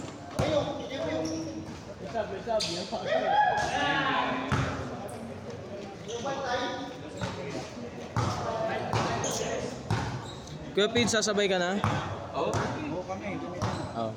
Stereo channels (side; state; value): both; identical; correlation 1.00